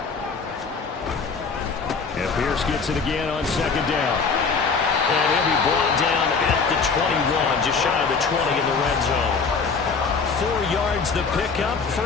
And Pierce gets it again on 2nd down. And he'll be brought down at the 21, just shy of the 20 in the red zone. 4 yards the pickup,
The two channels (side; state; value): right; quieter; 5.0 dB